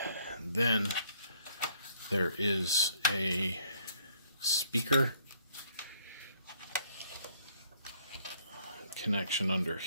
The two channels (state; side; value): inverted; both; correlation -0.66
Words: then there is a speaker connection under